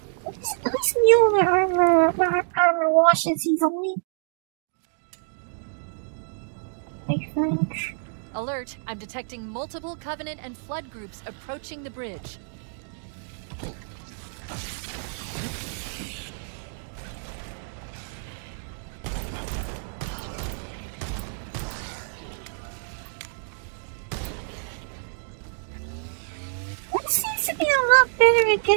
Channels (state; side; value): silent; left; digital silence